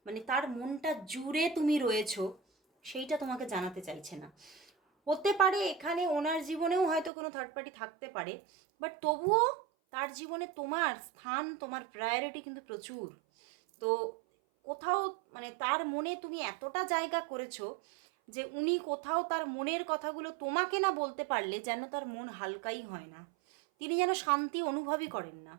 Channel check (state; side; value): drops out; left; at 7.1 s